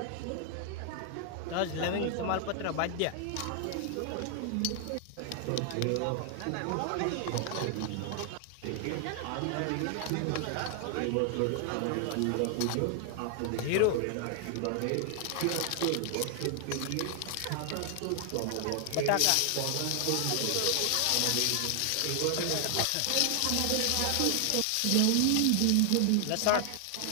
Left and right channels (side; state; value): both; different; correlation 0.00